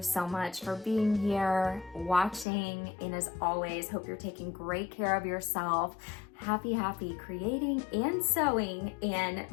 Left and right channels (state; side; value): drops out; right; at 2.5 s